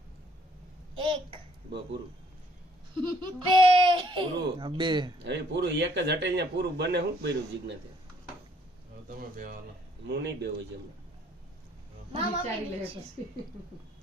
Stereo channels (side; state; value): both; normal; correlation 0.64